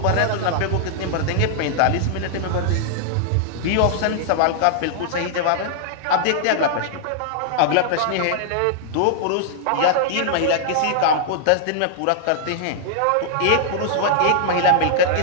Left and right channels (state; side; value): different; both; correlation -0.01